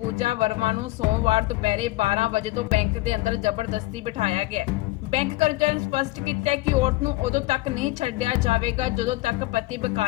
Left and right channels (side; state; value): right; quieter; 19.3 dB